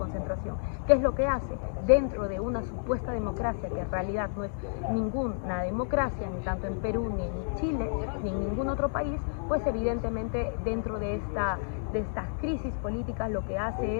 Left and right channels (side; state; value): right; silent; digital silence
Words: ¿Qué es lo que hace? Dentro de una supuesta democracia, que en realidad no es ninguna democracia, ni tanto en Perú, ni en Chile, ni en ningún otro país, pues evidentemente dentro de esta de estas crisis políticas lo que